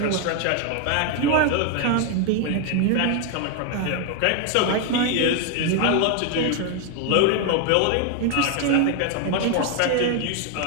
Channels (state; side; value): different; both; correlation 0.01